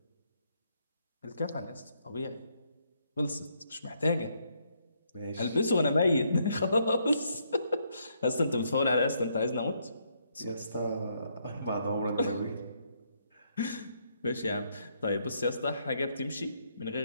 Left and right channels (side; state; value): both; inverted; correlation -0.74